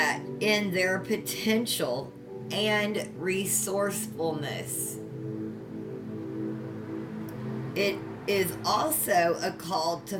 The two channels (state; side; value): identical; both; correlation 1.00